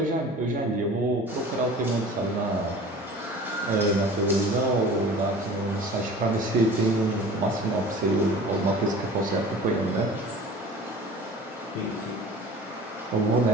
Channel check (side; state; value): both; normal; correlation 0.42